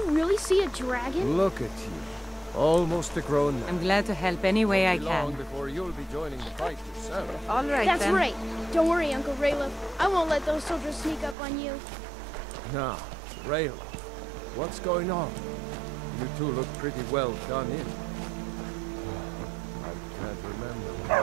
really see a dragon? Look at you. Almost a grown... I'm glad to help any way I can. All right, That's then. right. Don't worry, Uncle Rayla. I won't let those soldiers sneak up on you. No, fail. You two look pretty well done in. I can't remember.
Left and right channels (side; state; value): left; drops out; at 11.4 s